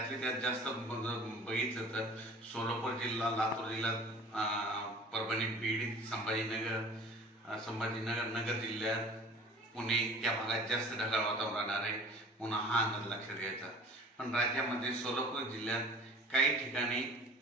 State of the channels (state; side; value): normal; both; correlation 0.45